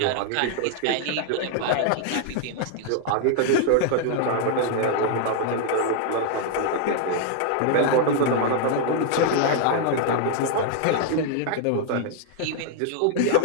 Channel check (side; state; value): both; different; correlation 0.00